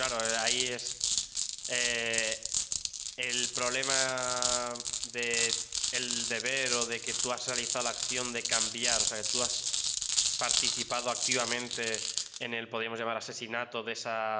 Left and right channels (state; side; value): identical; both; correlation 1.00